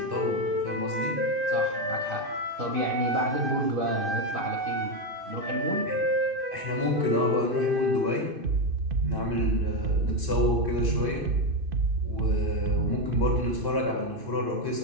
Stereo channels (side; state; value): left; late; 2.5 ms